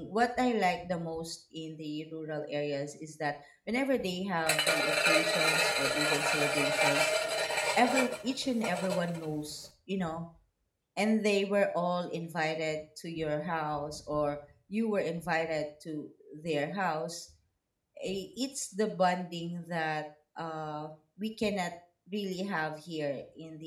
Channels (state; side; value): identical; both; correlation 1.00